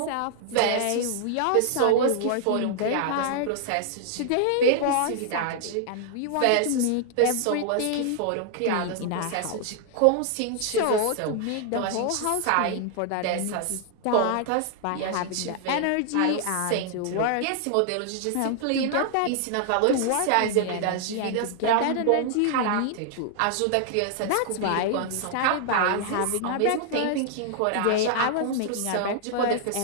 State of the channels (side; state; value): both; different; correlation 0.00